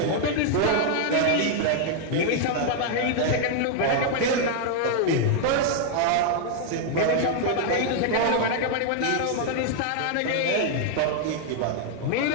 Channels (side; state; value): both; different; correlation 0.00